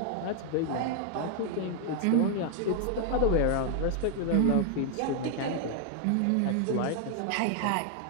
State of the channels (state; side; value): different; both; correlation 0.00